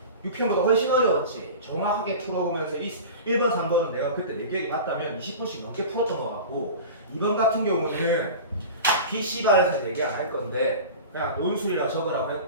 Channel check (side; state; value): both; inverted; correlation -0.34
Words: 6편보다 훨씬 어려웠지. 정확하게 풀어보면서 1번, 3번은 내가 그때 내 기억이 맞다면 20분씩 넘게 풀었던 것 같고 2번 같은 경우는 PC반에서 얘기 안 할 건데 그냥 논술이라 적으라고